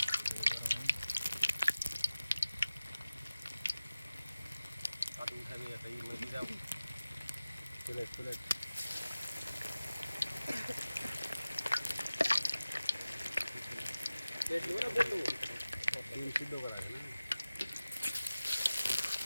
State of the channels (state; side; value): inverted; both; correlation -0.97